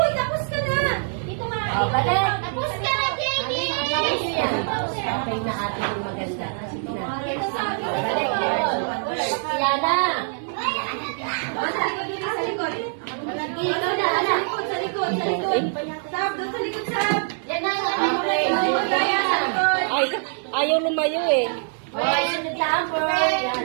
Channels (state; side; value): silent; left; 62 dB below the other